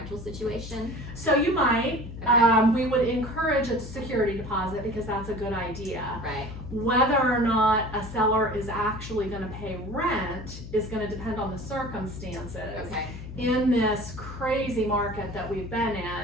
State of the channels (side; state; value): left; noise; hum, 11 dB below the sound